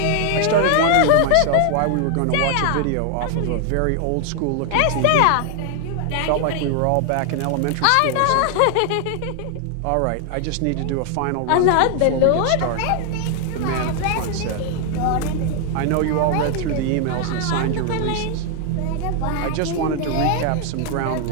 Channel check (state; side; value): different; both; correlation 0.00